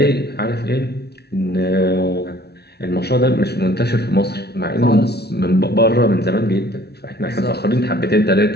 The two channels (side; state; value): right; late; 0.48 ms